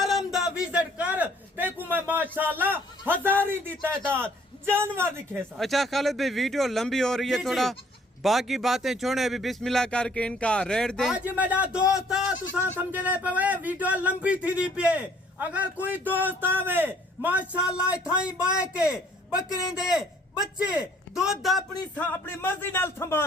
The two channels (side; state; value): both; normal; correlation 0.60